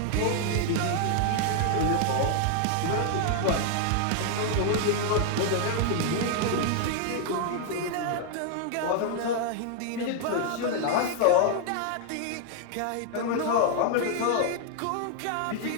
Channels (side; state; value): both; different; correlation 0.00